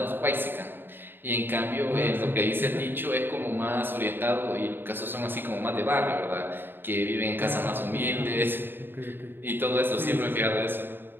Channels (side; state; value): left; late; 0.098 ms